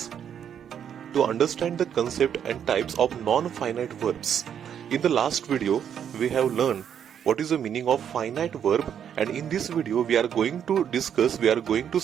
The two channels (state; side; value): quieter; left; 8.7 dB